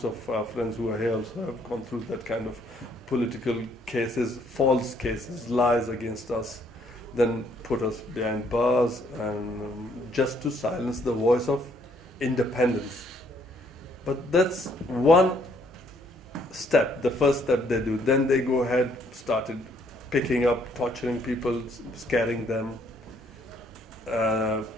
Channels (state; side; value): normal; both; correlation 0.67